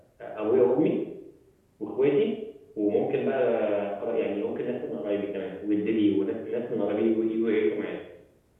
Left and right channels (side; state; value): both; identical; correlation 1.00